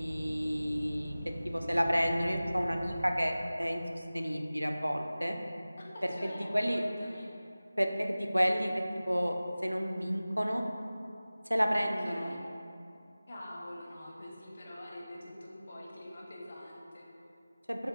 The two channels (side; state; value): both; inverted; correlation -0.98